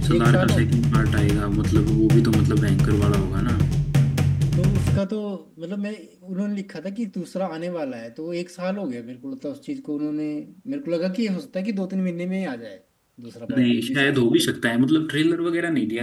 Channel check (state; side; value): identical; both; correlation 1.00